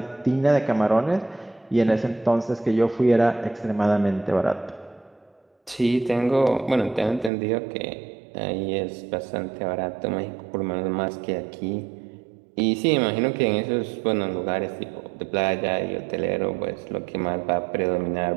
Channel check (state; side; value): drops out; left; at 7.3 s